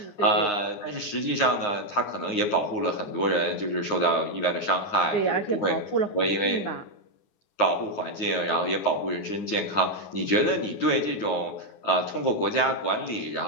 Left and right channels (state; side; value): late; right; 9.7 ms